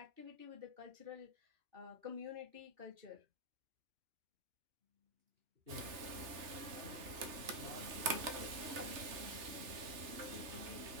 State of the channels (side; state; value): left; late; 3.3 ms